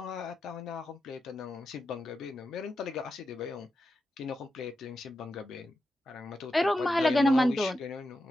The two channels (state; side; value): normal; both; correlation 0.89